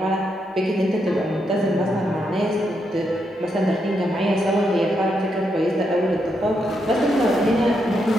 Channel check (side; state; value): both; normal; correlation 0.81